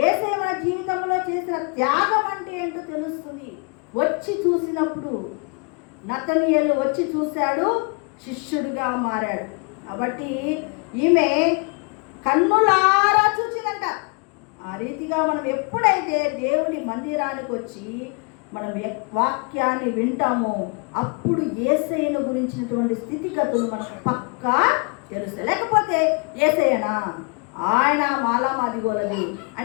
మన జీవితంలో చేసిన త్యాగం అంటే ఏంటో తెలుస్తుంది వచ్చి చూసినప్పుడు. నతనీయేలు వచ్చి చూశాడు, శిష్యుడిగా మారాడు. కాబట్టి ఈమె కన్నులారా చూసిందంట. ఆ రీతిగా మనం ఎప్పుడైతే దేవుని మందిరానికి వచ్చి మనం వాక్యాన్ని వింటామో అప్పుడు యేసయ్యను గురించినటువంటి స్థితిగతులు మనకు పక్కా తెలుస్తాయి. లేకపోతే యేసయ్యనా, ఆయన మాలామాదిగోలది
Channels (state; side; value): quieter; right; 33.3 dB